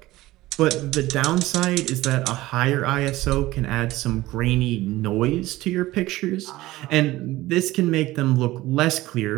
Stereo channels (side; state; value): left; quieter; 17.7 dB